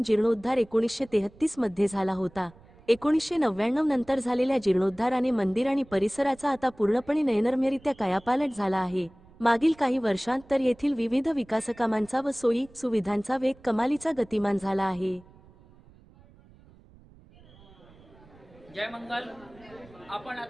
जीर्णोद्धार 1933 मध्ये झाला होता। 1999 नंतर झालेल्या जीर्णोद्धाराने मंदिर आणि परिसराचा आता पूर्णपणे नयनरम्यरित्या कायापालट झाला आहे। मागील काही वर्षांत तर येथील विविध विकासकामांचा व सोयी सुविधांचा वेग कमालीचा गतिमान झाला आहे। जय मंगल। आपण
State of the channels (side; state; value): right; noise; rumble, 25 dB below the sound